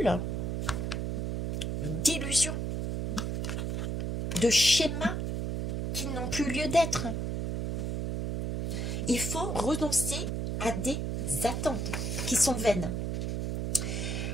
d'illusions, de schémas qui n'ont plus lieu d'être. Il faut renoncer à des attentes qui sont vaines.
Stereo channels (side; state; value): right; noise; hum, 1 dB below the sound